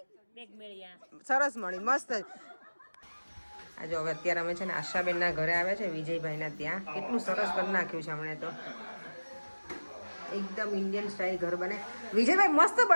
સરસ મળી મસ્ત આ જો હવે અત્યારે અમે છે ને આશાબેનના ઘરે આવ્યા છે વિજયભાઈના ત્યાં કેટલું સરસ કરી નાખ્યું છે હમણાં તો એકદમ ઇન્ડિયન સ્ટાઇલ ઘર બને વિજયભાઈ મસ્ત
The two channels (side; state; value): both; inverted; correlation -1.00